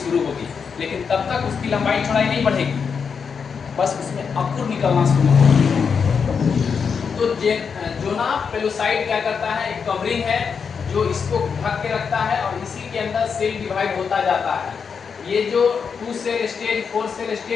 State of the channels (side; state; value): right; quieter; 6.1 dB